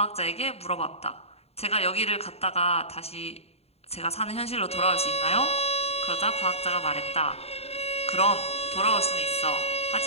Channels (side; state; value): right; late; 0.30 ms